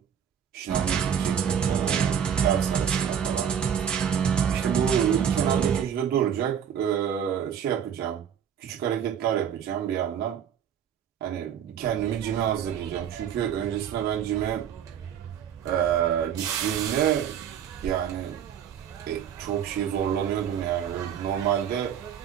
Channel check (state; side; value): quieter; left; 8.6 dB